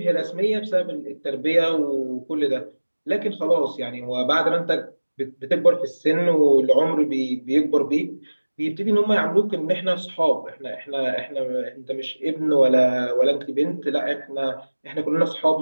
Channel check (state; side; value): inverted; both; correlation -1.00